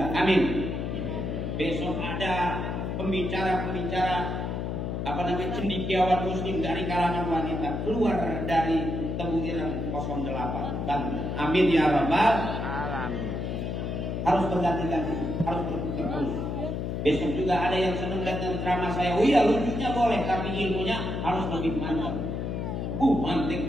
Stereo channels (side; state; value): left; noise; hum, 3 dB below the sound